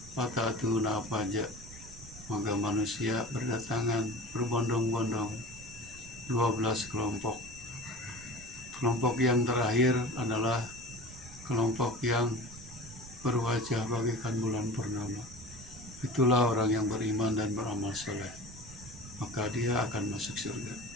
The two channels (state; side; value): noise; right; rumble, 16 dB below the sound